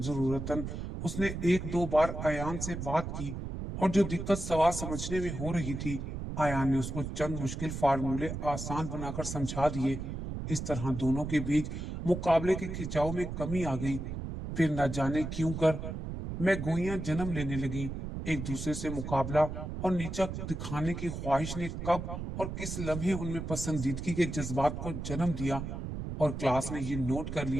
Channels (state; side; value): noise; right; rumble, 6 dB below the sound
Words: उसने एक दो बार आयान से बात की और जो दिक्कत सवाल समझने में हो रही थी, आयान ने उसको चंद मुश्किल फार्मूले आसान बनाकर समझा दिए। इस तरह दोनों के बीच मुकाबले के खिंचाव में कमी आ गई। फिर न जाने क्यों कर मैं गोइयां जन्म लेने लगी। एक दूसरे से मुकाबला और नीचा दिखाने की ख्वाहिश ने कब और किस लम्हे उनमें पसंदीदगी के जज्बात को जन्म दिया और क्लास ने ये नोट कर